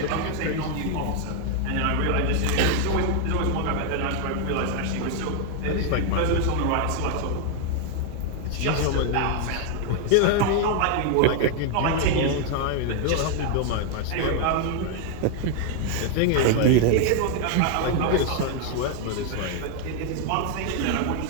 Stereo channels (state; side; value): different; both; correlation 0.00